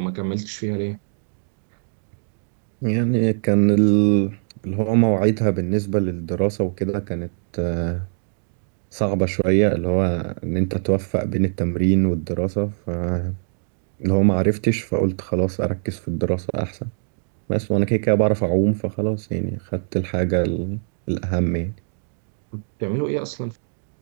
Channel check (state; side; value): silent; left; digital silence